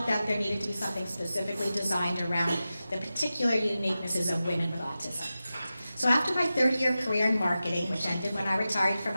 that there needed to be something specifically designed around the particular uniquenesses of women with autism. So after my 30-year career in marketing, which ended when I retired from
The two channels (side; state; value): both; inverted; correlation -0.93